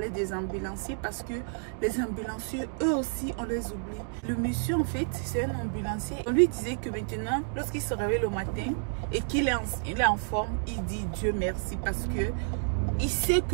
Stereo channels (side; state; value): left; silent; digital silence